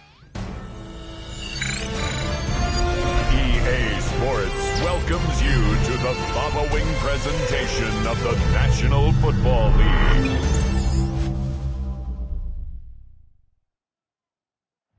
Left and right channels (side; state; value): both; identical; correlation 1.00